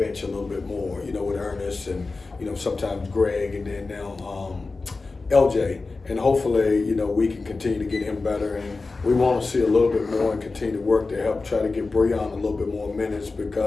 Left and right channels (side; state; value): right; quieter; 3.8 dB